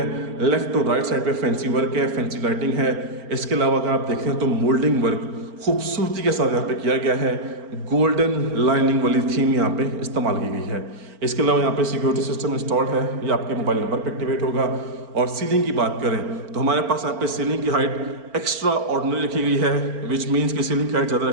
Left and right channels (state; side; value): late; left; 4.4 ms